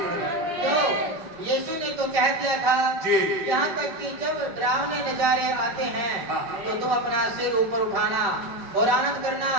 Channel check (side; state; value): left; late; 5.6 ms